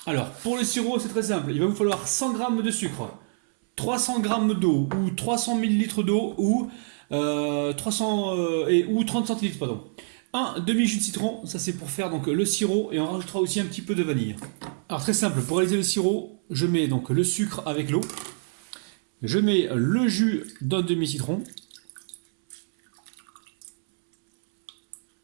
Alors pour le sirop c'est très simple, il va vous falloir 100 g de sucre, 300 g d'eau ou 300 ml d'eau ou 30 centilitres pardon. Un demi-jus de citron, ça c'est pour faire donc le sirop et on rajoutera aussi un petit peu de vanille. Alors très simple, pour réaliser le sirop, je mets donc le sucre avec l'eau, je mets le jus d'un demi-citron.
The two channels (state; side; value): silent; left; 61 dB below the other